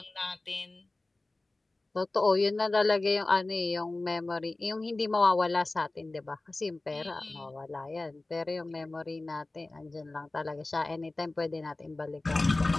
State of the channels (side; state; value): right; quieter; 3.0 dB